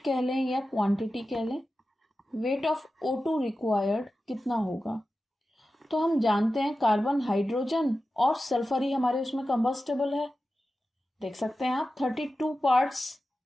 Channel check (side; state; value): both; normal; correlation 0.93